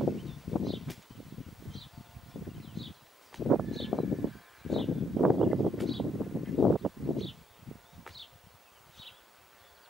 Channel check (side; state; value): both; normal; correlation 0.72